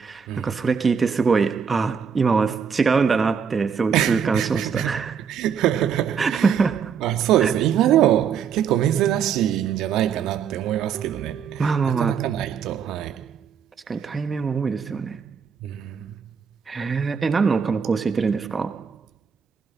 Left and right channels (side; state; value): left; quieter; 7.0 dB